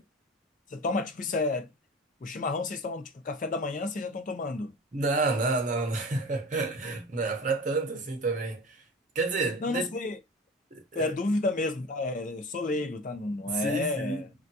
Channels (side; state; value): both; normal; correlation 0.35